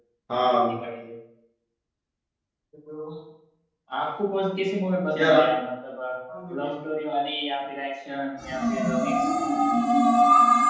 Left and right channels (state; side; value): identical; both; correlation 1.00